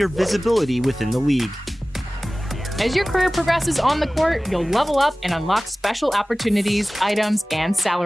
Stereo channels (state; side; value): normal; both; correlation 0.98